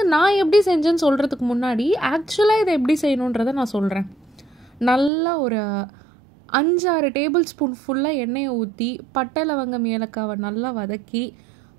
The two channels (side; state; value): left; drops out; at 5.1 s